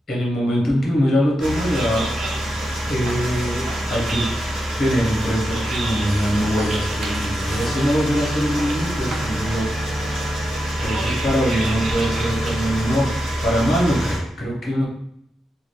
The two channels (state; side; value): normal; both; correlation 0.87